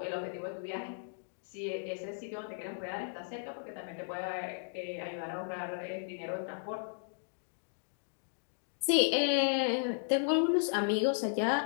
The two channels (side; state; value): right; silent; digital silence